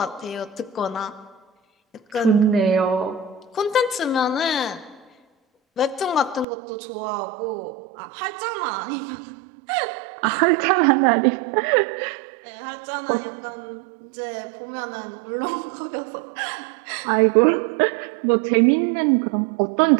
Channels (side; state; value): left; drops out; at 6.5 s